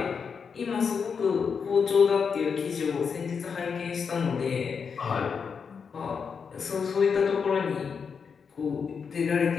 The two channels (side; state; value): right; quieter; 6.1 dB